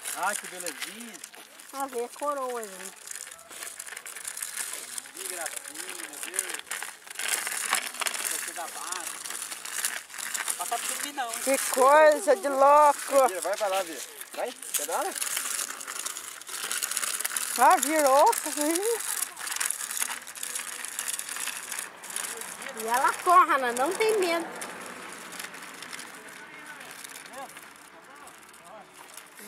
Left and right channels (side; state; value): both; identical; correlation 1.00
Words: Ai, que belezinha. A ver a coroa, gente. Que gracinha, meu Deus. Você dá base. Passa por mim não, hein? Que coisa de louco. Vira, vai pra lá, Vira. Vai, pedala. Ah, virou. E ela corre, ela não tem medo.